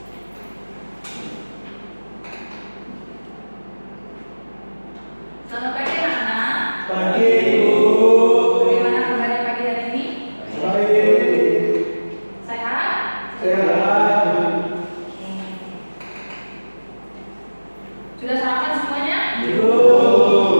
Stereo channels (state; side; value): inverted; both; correlation -1.00